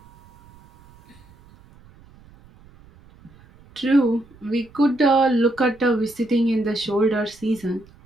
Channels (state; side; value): noise; right; rumble, 26 dB below the sound